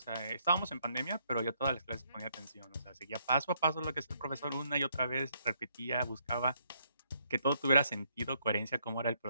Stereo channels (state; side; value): inverted; both; correlation -0.72